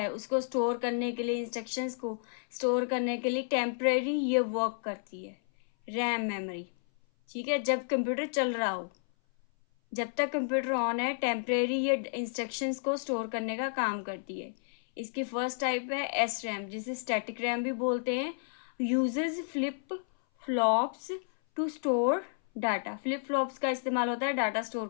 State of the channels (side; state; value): right; silent; 57 dB below the other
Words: उसको स्टोर करने के लिए, इंस्ट्रक्शंस को स्टोर करने के लिए टेम्परेरी ये वर्क करती है रैम मेमोरी। ठीक है, जब कंप्यूटर चल रहा हो, जब तक कंप्यूटर ऑन है, टेम्परेरी ये इंस्ट्रक्शंस को स्टोर करने का काम करती है। इसकी फर्स्ट टाइप है एस रैम, जिसे स्टैटिक रैम भी बोलते हैं। Uses flip flops to store data, flip flops का इस्तेमाल होता है डाटा स्टोर